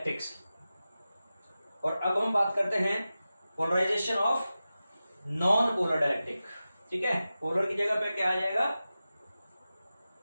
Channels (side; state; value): both; inverted; correlation -0.94